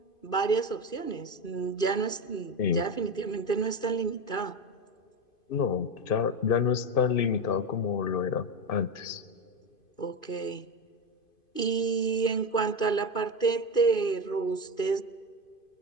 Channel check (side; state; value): right; late; 2.5 ms